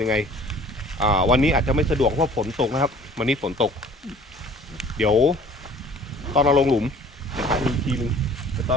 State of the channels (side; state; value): both; normal; correlation 0.50